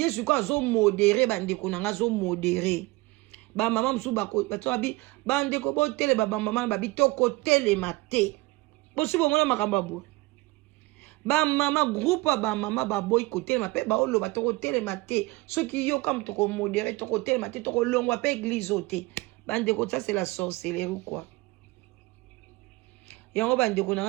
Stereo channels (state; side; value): quieter; left; 22.1 dB